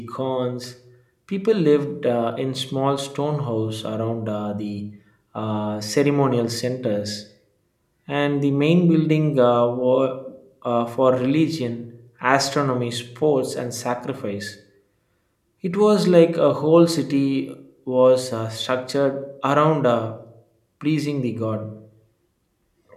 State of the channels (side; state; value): both; identical; correlation 1.00